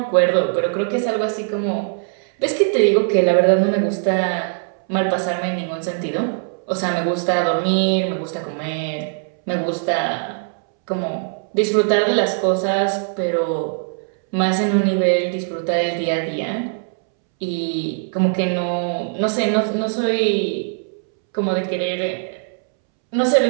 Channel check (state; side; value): silent; left; 65 dB below the other